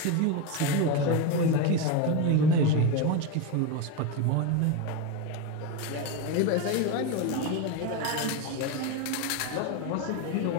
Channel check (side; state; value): both; different; correlation 0.04